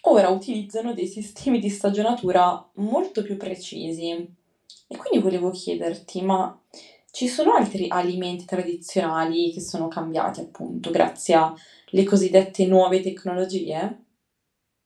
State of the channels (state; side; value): identical; both; correlation 1.00